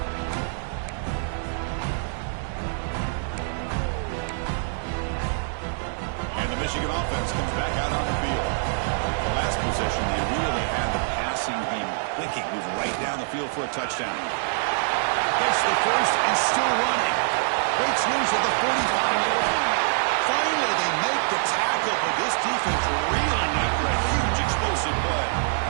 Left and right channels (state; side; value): silent; left; digital silence